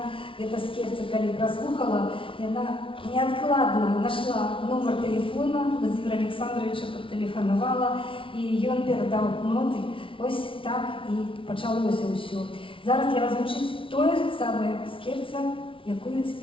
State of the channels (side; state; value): right; late; 0.25 ms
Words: гэта скерца, калі праслухала, яна неадкладна нашла нумар тэлефона, Владимира Александровича патэлефанавала, і ён перадаў ноты. Вось так і пачалося ўсё. Зараз для вас гучыць тое самае скерца, якую